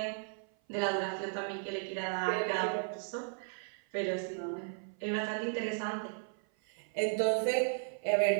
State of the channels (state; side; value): silent; left; 54 dB below the other